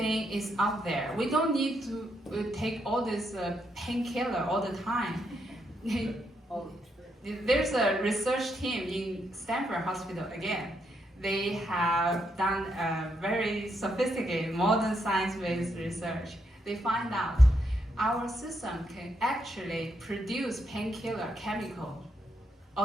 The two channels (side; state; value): both; normal; correlation 0.79